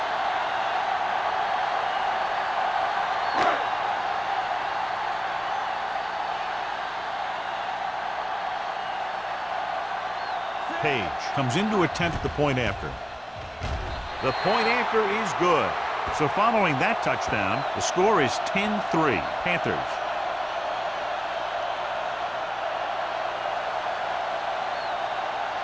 Page comes in to attempt the point after. The point after is good. So following that touchdown, the score is 10-3, Panthers.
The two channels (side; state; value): both; identical; correlation 1.00